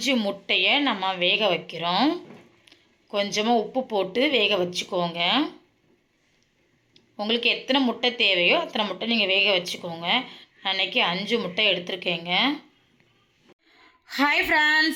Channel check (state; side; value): identical; both; correlation 1.00